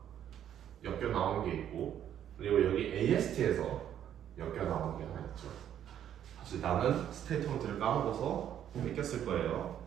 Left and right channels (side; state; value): left; quieter; 10.2 dB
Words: 엮여 나오는 게 있고 그리고 여기 AST에서 엮여 나오는 게 하나 있죠. 사실 나는 스테이트먼트를 까먹어서 뺏겼을 거예요.